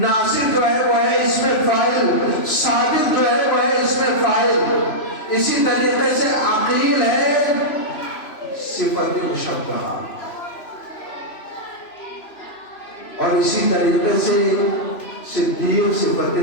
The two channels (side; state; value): right; late; 3.0 ms